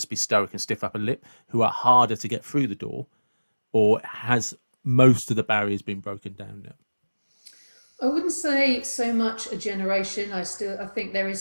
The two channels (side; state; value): both; inverted; correlation -1.00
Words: be stoic and stiff upper lip, who are harder to get through the door, or has most of the barriers been broken down now? I wouldn't say so much a generation. I think there is